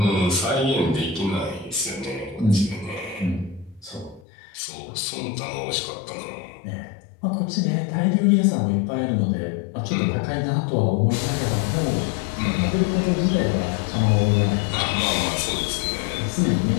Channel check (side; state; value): right; drops out; at 4.2 s